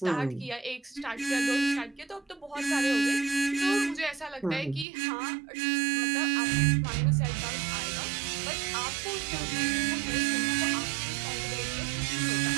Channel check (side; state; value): left; drops out; at 4.9 s